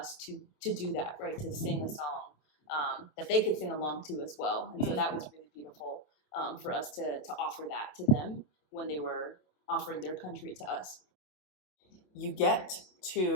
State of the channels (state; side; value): late; right; 27 ms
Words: to do that, right? To sing a song that they could sing along to as well. And so that was really beautiful for us to offer that to them when they were offering their country to us. You get